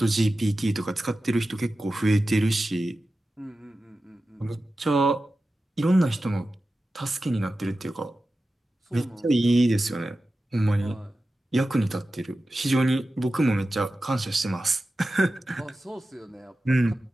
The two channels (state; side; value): normal; both; correlation 0.94